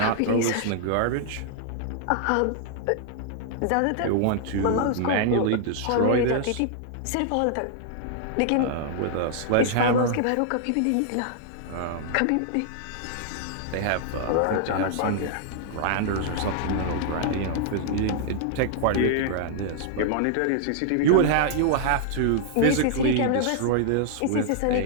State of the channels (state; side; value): different; both; correlation -0.01